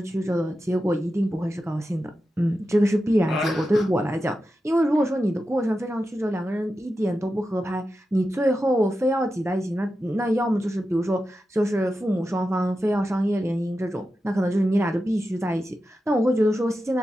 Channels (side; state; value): both; normal; correlation 0.91